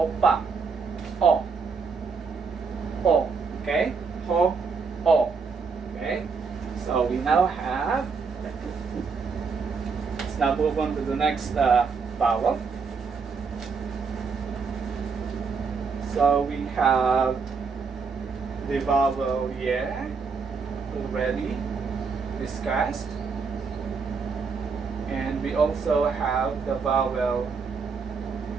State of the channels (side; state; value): left; quieter; 5.2 dB